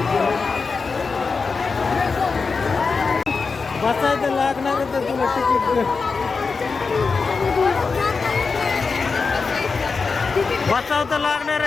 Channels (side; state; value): right; quieter; 4.7 dB